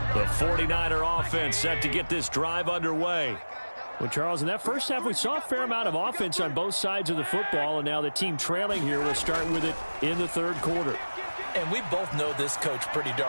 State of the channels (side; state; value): both; inverted; correlation -1.00